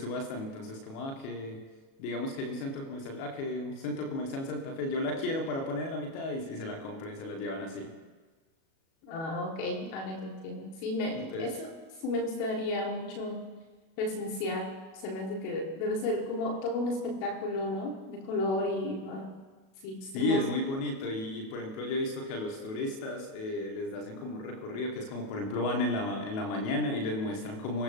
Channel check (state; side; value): late; right; 37 ms